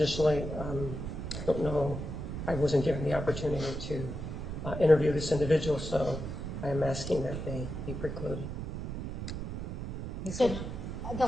I don't know, I wasn't given the opportunity to interview this individual, so I am asking that they be precluded. So the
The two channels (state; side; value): noise; right; rumble, 6 dB below the sound